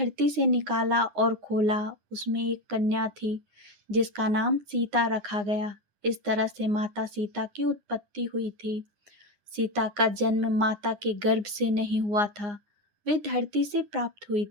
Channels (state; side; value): late; left; 9.7 ms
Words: से निकाला और खोला। उसमें एक कन्या थी जिसका नाम सीता रखा गया। इस तरह से माता सीता की उत्पत्ति हुई थी। सीता का जन्म माता के गर्भ से नहीं हुआ था, वे धरती से प्राप्त हुई